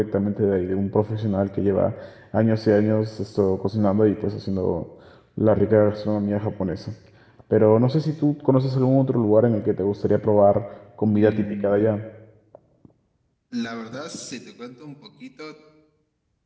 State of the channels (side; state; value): both; identical; correlation 1.00